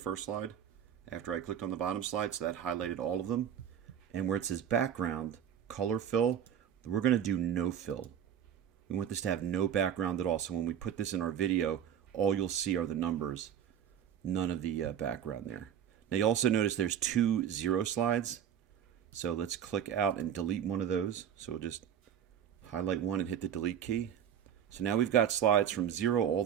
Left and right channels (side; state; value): left; quieter; 9.3 dB